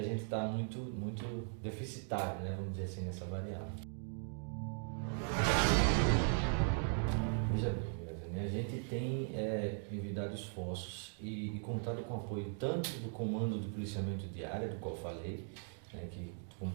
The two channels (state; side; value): silent; left; 52 dB below the other